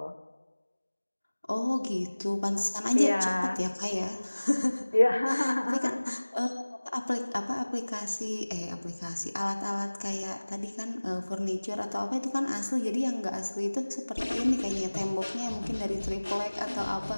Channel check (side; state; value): both; inverted; correlation -1.00